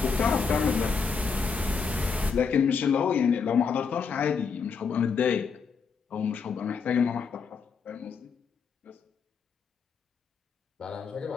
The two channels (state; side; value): quieter; right; 5.6 dB